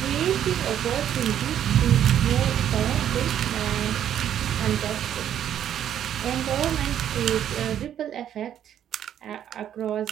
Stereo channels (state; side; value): quieter; left; 10.2 dB